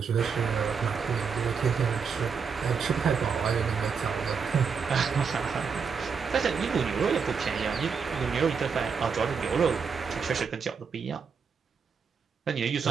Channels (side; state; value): left; quieter; 6.0 dB